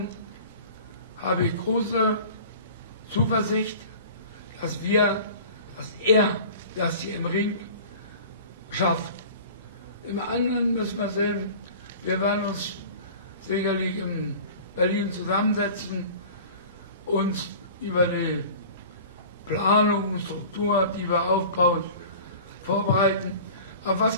habe ich große Zuversicht, dass er das hier im Ring schafft. Im anderen müssen wir sehen, wir werden uns sicherlich in Berlin zusammensetzen, uns über die Planung und Struktur, die wir aufbauen, vorbereiten. Aber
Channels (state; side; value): inverted; both; correlation -0.41